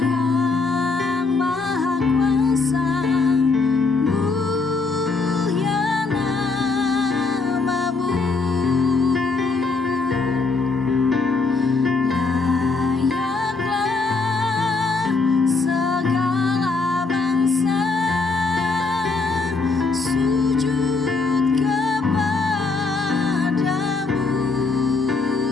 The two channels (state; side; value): quieter; right; 4.0 dB